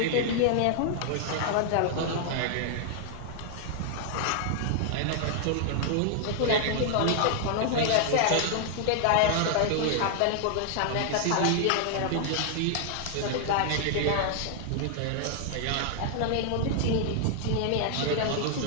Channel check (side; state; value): both; different; correlation 0.00